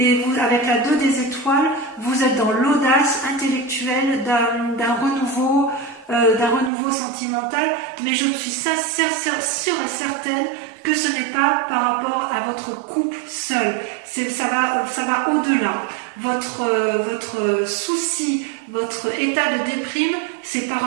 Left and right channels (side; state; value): left; drops out; at 6.7 s